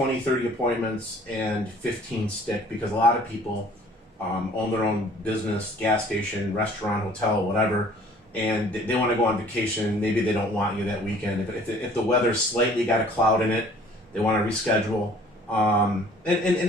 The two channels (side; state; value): both; normal; correlation 0.53